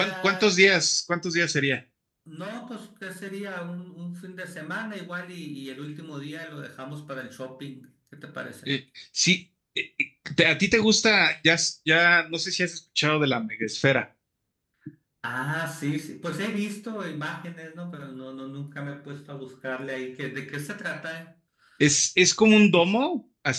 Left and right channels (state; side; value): identical; both; correlation 1.00